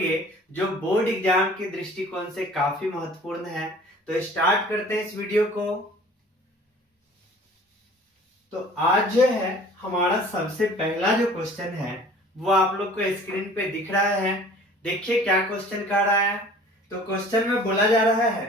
जो बोर्ड एग्जाम के दृष्टिकोण से काफी महत्वपूर्ण है। तो स्टार्ट करते हैं इस वीडियो को। तो आज जो है हमारा सबसे पहला जो क्वेश्चन है वो आप लोग को स्क्रीन पे दिख रहा है। देखिए क्या क्वेश्चन कह रहा है। तो क्वेश्चन में बोला जा रहा है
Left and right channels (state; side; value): normal; both; correlation 0.48